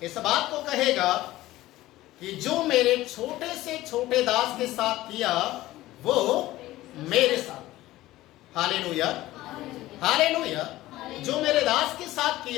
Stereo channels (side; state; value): right; quieter; 16.5 dB